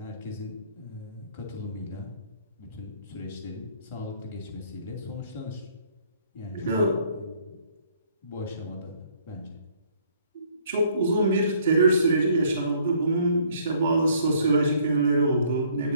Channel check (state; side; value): inverted; both; correlation -0.62